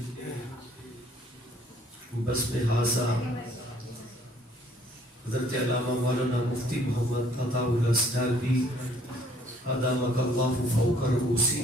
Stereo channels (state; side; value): normal; both; correlation 0.60